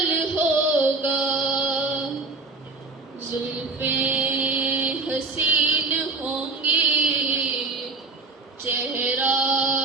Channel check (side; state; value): left; quieter; 3.6 dB